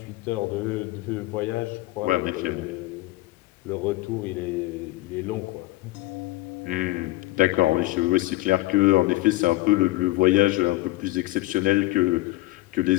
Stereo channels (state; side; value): quieter; right; 19.0 dB